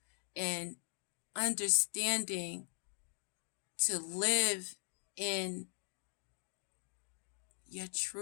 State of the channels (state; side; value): silent; right; digital silence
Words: and understanding to live in your